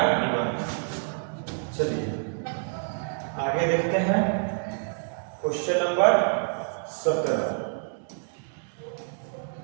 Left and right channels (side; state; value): left; silent; 60 dB below the other